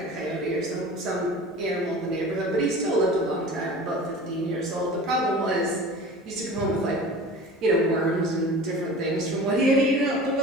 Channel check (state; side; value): normal; both; correlation 0.39